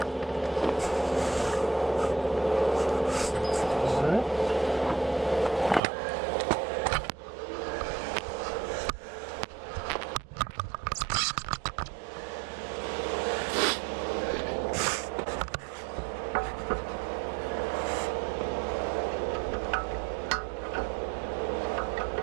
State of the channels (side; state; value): left; drops out; at 5.8 s